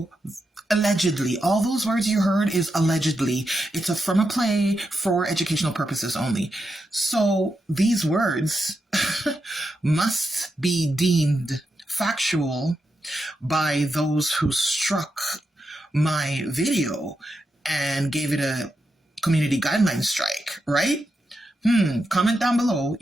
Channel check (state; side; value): normal; both; correlation 0.86